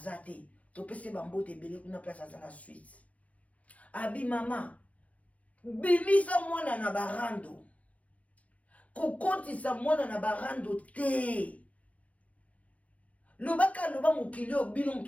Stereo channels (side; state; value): right; late; 0.067 ms